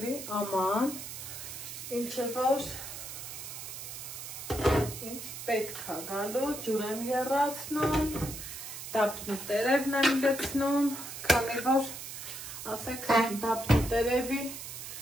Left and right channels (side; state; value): right; noise; hiss, 9 dB below the sound